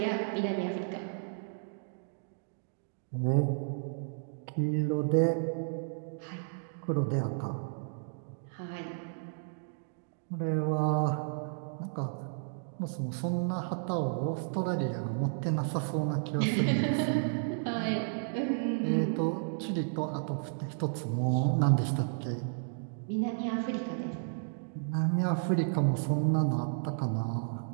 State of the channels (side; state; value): left; silent; digital silence